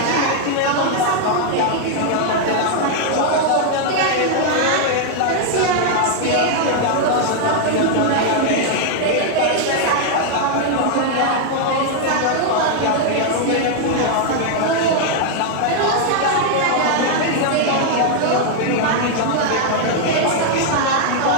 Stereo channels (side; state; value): both; different; correlation 0.00